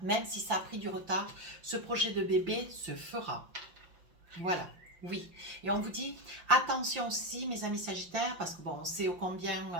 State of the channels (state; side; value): late; left; 5.7 ms